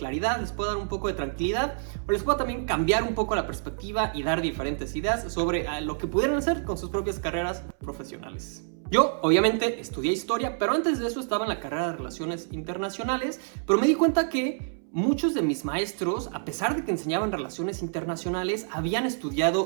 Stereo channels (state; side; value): silent; left; 60 dB below the other